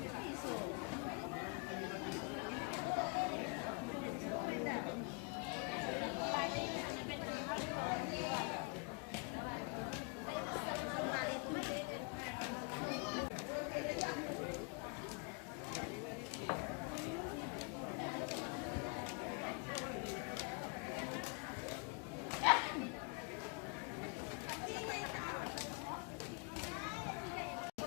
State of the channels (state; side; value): quieter; right; 33.9 dB